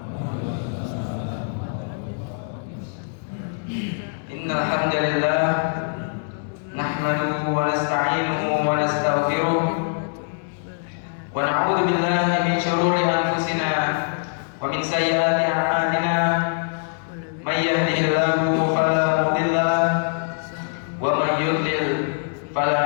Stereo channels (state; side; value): silent; right; digital silence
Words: Innal hamdalillah nahmaduhu wa nasta'inuhu wa nastaghfiruh wa na'udzu billahi min shururi anfusina wa min sayyiati a'malina. May yahdihillahu fala mudilla lahu wa may yudlil